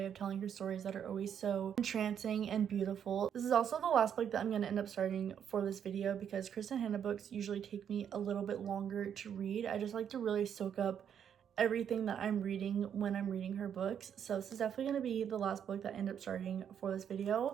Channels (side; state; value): left; quieter; 8.6 dB